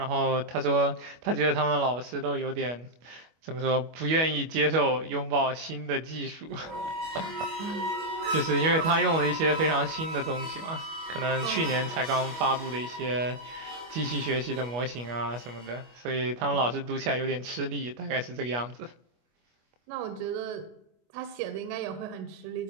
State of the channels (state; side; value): late; left; 25 ms